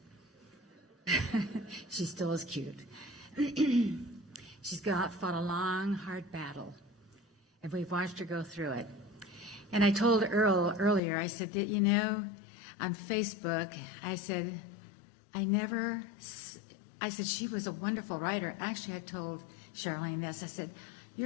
She still is cute. She's fought a long, hard battle, and we've watched her go through it. And I told Earl earlier, I said that, on Facebook, I said, she was a wonderful writer. Actually, I told Charlene this. I said,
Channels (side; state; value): right; drops out; at 11.0 s